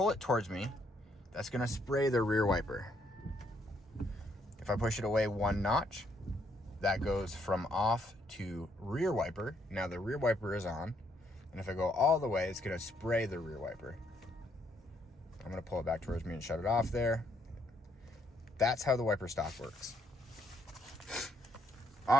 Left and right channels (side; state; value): both; normal; correlation 0.72